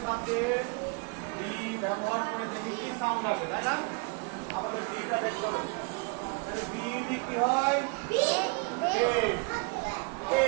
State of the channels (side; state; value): left; quieter; 32.7 dB